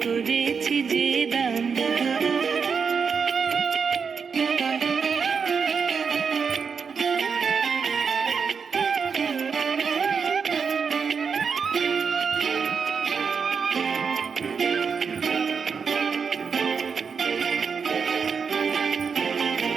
করেছি যে দান।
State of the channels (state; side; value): quieter; left; 5.9 dB